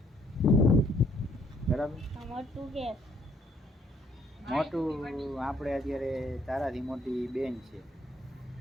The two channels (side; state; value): both; normal; correlation 0.67